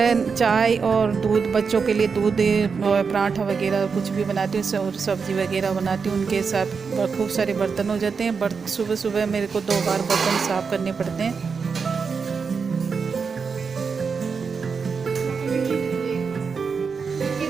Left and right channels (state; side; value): quieter; left; 5.5 dB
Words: चाय और दूध, बच्चों के लिए दूध और पराठा वगैरह कुछ भी बनाती हूँ और सब्ज़ी वगैरह बनाती हूँ। उनके साथ खूब सारे बर्तन हो जाते हैं। सुबह सुबह मेरे को 2 बार बर्तन साफ़ करने पड़ते हैं।